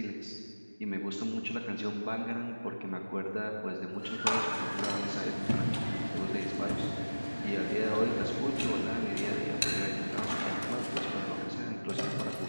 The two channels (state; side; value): inverted; both; correlation -1.00